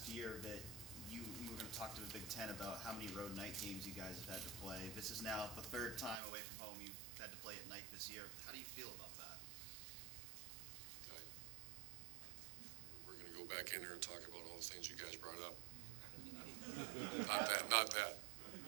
year that you were going to talk to the Big Ten about how many road night games you guys have had to play. This is now the 3rd time away from home you've had to play at night this year. How do you feel about that? We're going to go back in here and talk about all the things you guys brought up. Not that.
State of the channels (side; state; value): left; drops out; at 6.2 s